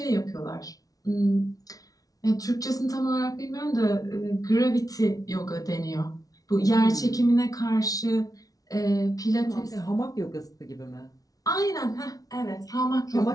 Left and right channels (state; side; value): late; right; 0.18 ms